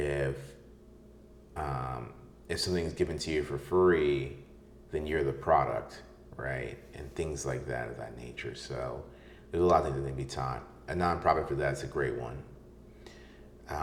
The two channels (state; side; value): identical; both; correlation 1.00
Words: something's given to you for free, then you're the product, right? And things like that of that nature. So there's a lot of things that need to be taught. A nonprofit for that is a great one.